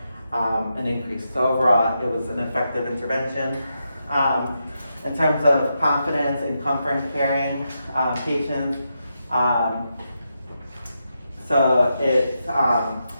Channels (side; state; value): both; inverted; correlation -0.85